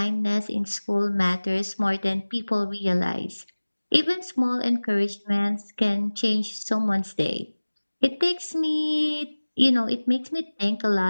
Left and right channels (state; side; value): inverted; both; correlation -1.00